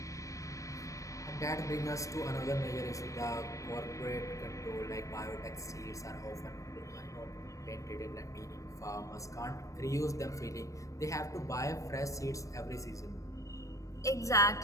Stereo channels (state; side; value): late; right; 0.16 ms